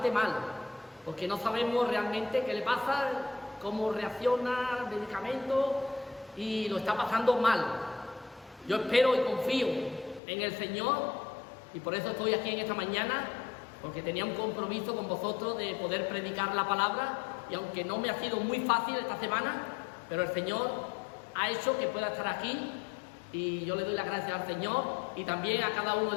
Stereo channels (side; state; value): right; drops out; at 10.2 s